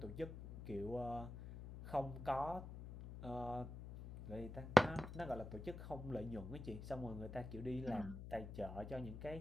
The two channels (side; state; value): left; noise; hum, 9 dB below the sound